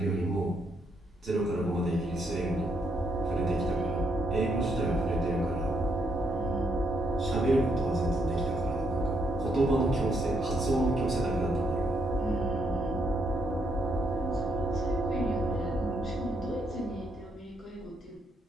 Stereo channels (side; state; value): both; normal; correlation 0.75